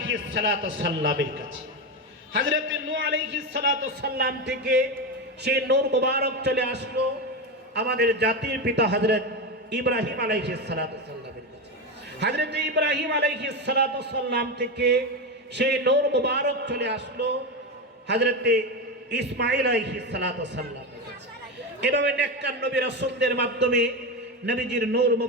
সালাতু সাল্লামের কাছে। হযরত নূহ আলাইহিস সালাতু সাল্লাম থেকে সেই নূর মুবারক চলে আসলো আমাদের জাতির পিতা হযরত ইব্রাহিম আলাইহিস সালাতু সাল্লামের কাছে। হযরত ইব্রাহিম আলাইহিস সালাতু সাল্লাম থেকে সেই নূর মুবারক চলে আসলো হযরতে ইসমাঈল আলাইহিস সালাতু সাল্লাম। এভাবে নেককার নবী রাসূলদের মাধ্যমে নবীজির নূর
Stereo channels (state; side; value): normal; both; correlation 0.15